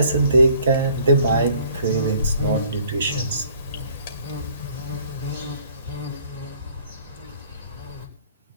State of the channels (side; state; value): both; inverted; correlation -0.57